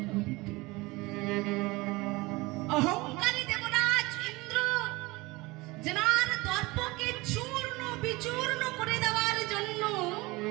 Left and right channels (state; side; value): quieter; left; 22.5 dB